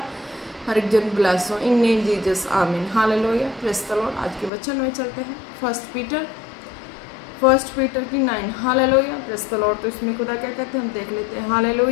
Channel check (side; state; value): right; drops out; at 4.5 s